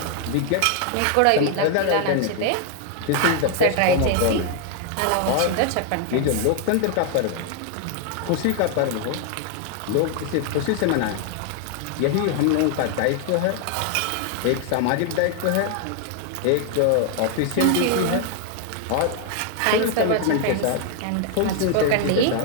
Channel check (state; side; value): different; both; correlation 0.00